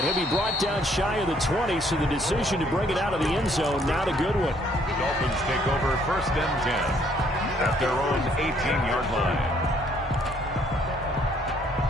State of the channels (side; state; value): both; normal; correlation 0.65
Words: he'll be brought down shy of the 20, so the decision to bring it out of the end zone, not a good one. The Dolphins take over 1st and 10 at their own 18-yard line.